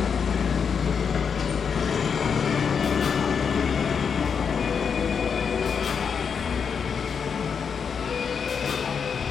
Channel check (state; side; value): quieter; right; 6.4 dB